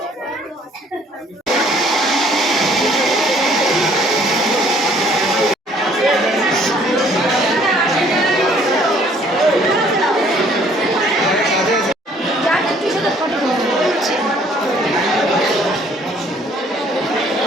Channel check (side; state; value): both; normal; correlation 0.60